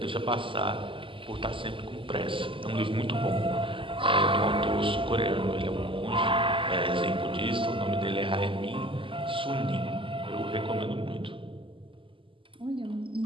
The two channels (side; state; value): left; late; 0.25 ms